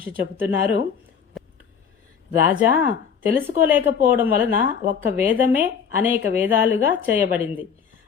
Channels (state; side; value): quieter; right; 7.1 dB